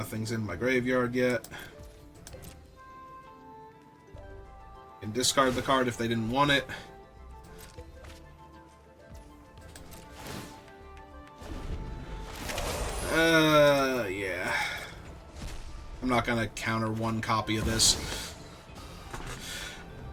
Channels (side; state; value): both; identical; correlation 1.00